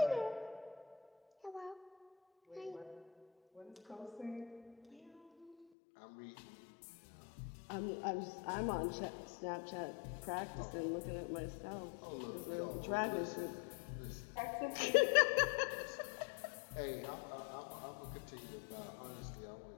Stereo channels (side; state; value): right; drops out; at 5.7 s